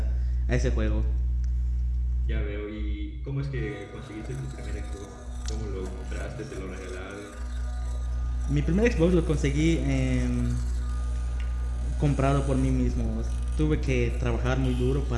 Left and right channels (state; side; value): identical; both; correlation 1.00